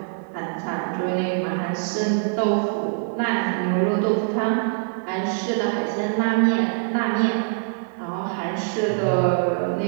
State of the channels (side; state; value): left; silent; 58 dB below the other